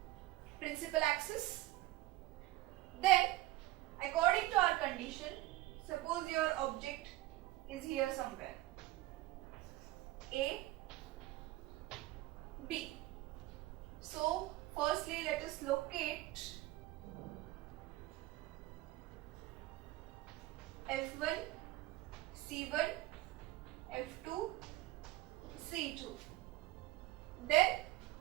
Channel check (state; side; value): quieter; left; 16.9 dB